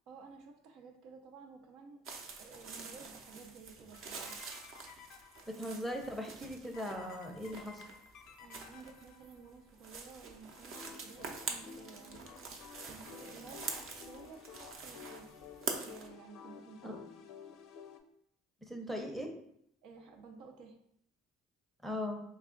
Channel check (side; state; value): both; normal; correlation 0.52